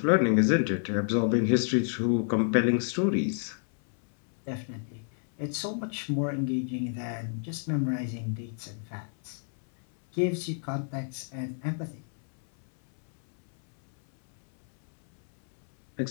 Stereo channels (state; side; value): silent; right; 59 dB below the other